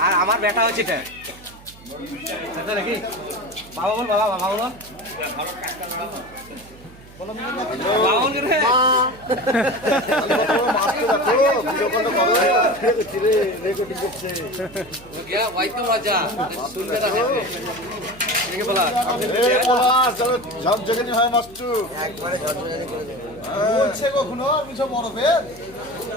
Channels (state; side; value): noise; right; hum, 21 dB below the sound